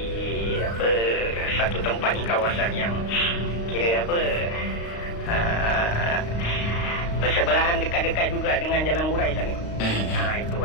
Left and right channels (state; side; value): late; right; 35 ms